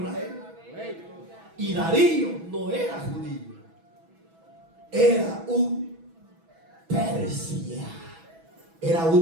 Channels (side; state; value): left; late; 6.1 ms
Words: Y Darío no era judío, era un Persia. Era